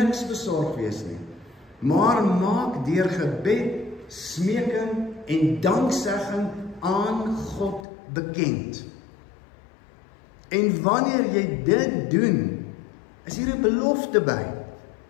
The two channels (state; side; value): drops out; right; at 7.8 s